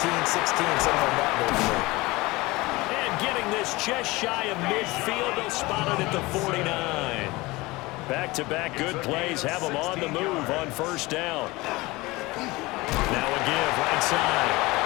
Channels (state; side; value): quieter; right; 21.7 dB